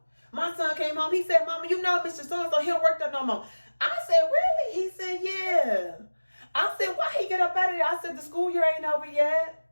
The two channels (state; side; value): inverted; both; correlation -1.00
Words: My son came home. He said, Mama, you know Mr. So-and-so, he don't work there no more. I said, really? He said, yeah. I said, why he get up out of there? I said, the school year ain't over